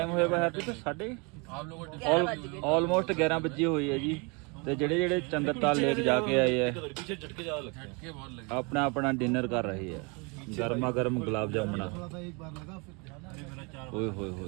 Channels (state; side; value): quieter; left; 31.0 dB